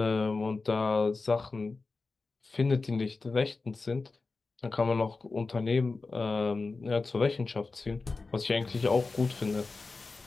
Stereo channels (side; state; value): right; quieter; 3.9 dB